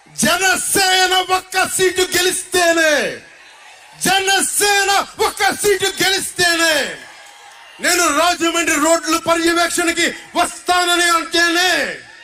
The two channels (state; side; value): identical; both; correlation 1.00